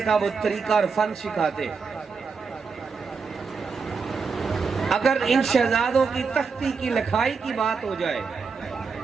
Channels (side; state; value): left; quieter; 5.2 dB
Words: کا وہ طریقہ اور فن سکھاتے ہیں۔ اگر ان شہزادوں کی تختی کی لکھائی کی بات ہو جائے